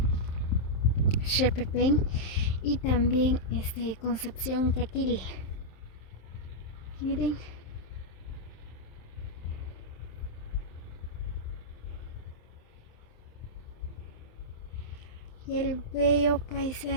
Xepepén y también Concepción Caquil. Miren. Y el bello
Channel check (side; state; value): right; late; 27 ms